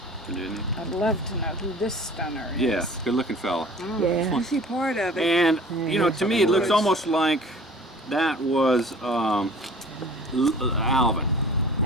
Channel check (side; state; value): both; normal; correlation 0.45